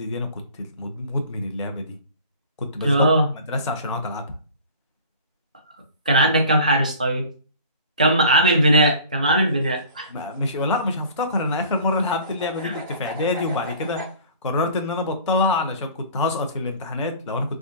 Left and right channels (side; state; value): both; inverted; correlation -0.45